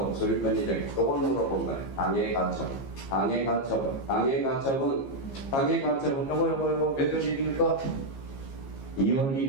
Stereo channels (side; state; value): right; late; 15 ms